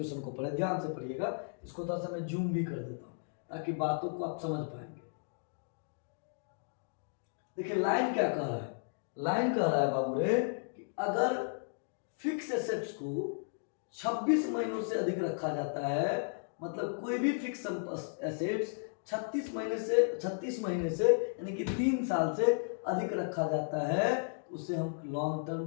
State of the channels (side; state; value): right; silent; digital silence